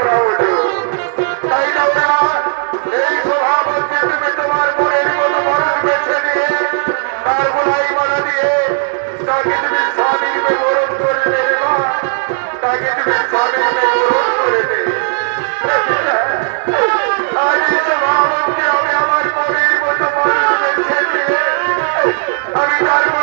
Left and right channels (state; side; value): silent; left; digital silence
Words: হলো। তাই না ওরে মা, এই সভা মধ্যে তুমি তোমার মনের মতো মানুষ বেছে নিয়ে তার গোলাই মালা দিয়ে তাকে তুমি স্বামীর বরণ করে নেবে মা, তাকে তুমি স্বামীর বরণ করে নেবে। আজ এই সভা মধ্যে আমি আমার মনের মতো মানুষ বেছে নিয়ে আমি তার